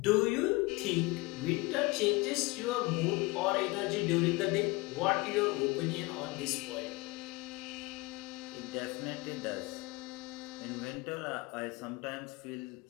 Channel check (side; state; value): right; quieter; 23.7 dB